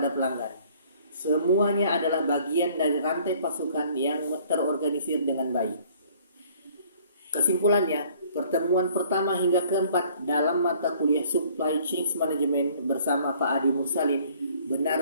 pelanggan. Semuanya adalah bagian dari rantai pasokan yang terorganisir dengan baik. Kesimpulannya, pertemuan pertama hingga keempat dalam mata kuliah Supply Chain Management bersama Pak Adi Mursalin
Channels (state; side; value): inverted; both; correlation -0.57